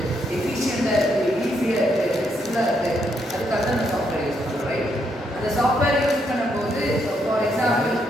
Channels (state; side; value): normal; both; correlation 0.76